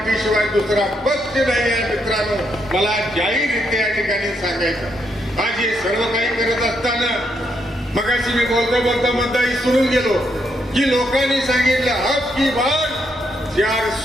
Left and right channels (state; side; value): normal; both; correlation 0.78